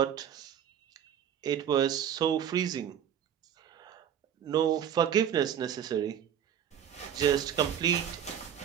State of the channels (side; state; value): left; quieter; 9.3 dB